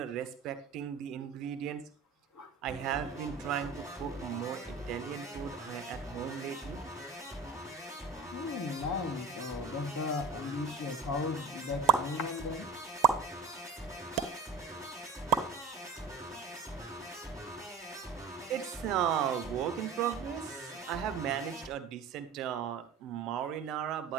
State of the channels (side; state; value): left; quieter; 4.4 dB